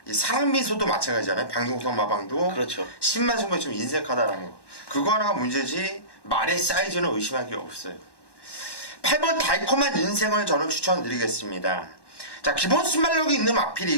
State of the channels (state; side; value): late; right; 1.1 ms